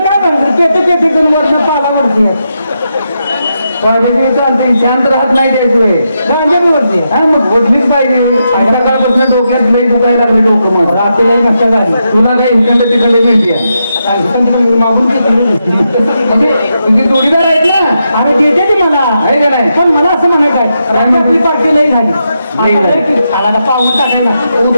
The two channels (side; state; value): both; inverted; correlation -0.84